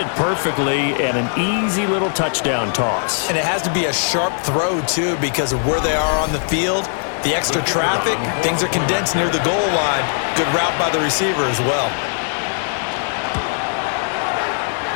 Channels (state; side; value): silent; right; 66 dB below the other